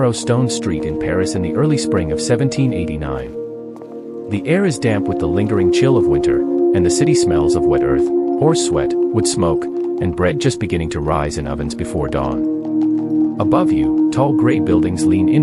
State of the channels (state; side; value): identical; both; correlation 1.00